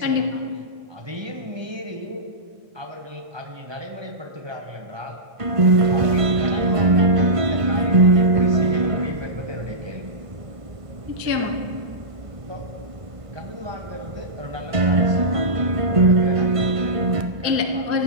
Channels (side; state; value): left; late; 1.5 ms